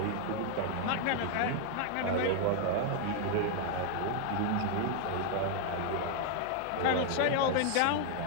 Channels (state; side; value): different; both; correlation 0.00